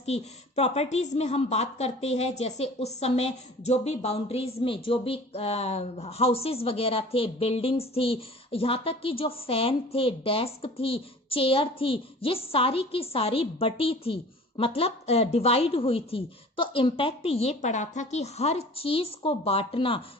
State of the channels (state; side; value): normal; both; correlation 0.44